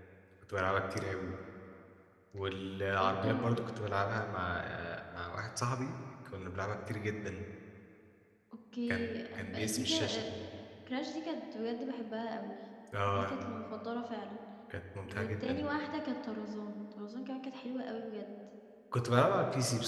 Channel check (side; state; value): both; identical; correlation 1.00